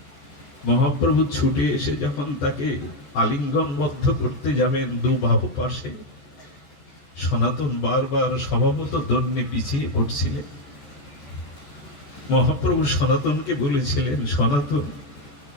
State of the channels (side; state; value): right; late; 14 ms